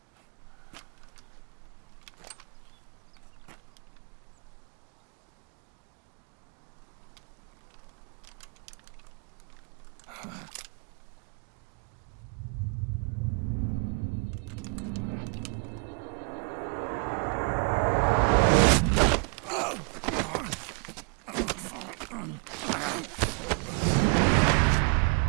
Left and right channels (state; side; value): quieter; left; 36.2 dB